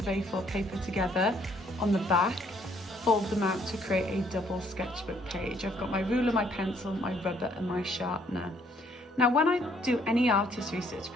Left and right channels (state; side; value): normal; both; correlation 0.65